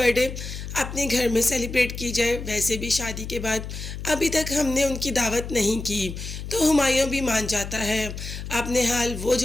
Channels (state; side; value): noise; left; hum, 8 dB below the sound